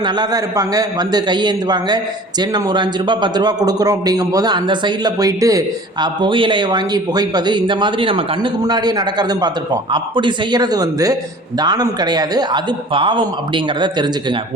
நல்லா தான் இருப்பாங்க, வந்து கையேந்துவாங்க, சரி நம்ம ஒரு 5 ரூபா 10 ரூபா கொடுக்குறோம் அப்படிங்கும்போது அந்த சைடில் போயிட்டு புகையிலையை வாங்கி புகைப்பது, இந்த மாதிரி நம்ம கண்ணுக்கு முன்னாடியே நடக்கிறதும் பார்த்துருப்போம். அப்படி செய்கிறது தானம் கிடையாது, அது பாவம் அப்படிங்கிறத தெரிஞ்சுக்குங்க.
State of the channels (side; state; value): both; normal; correlation 0.45